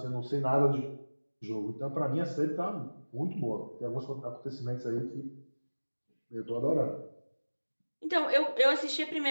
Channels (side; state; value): both; inverted; correlation -1.00